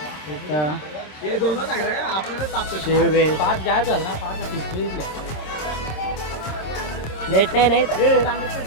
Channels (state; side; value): late; right; 26 ms